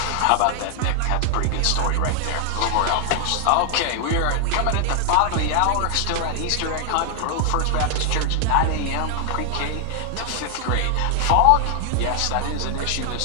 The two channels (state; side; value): different; both; correlation 0.00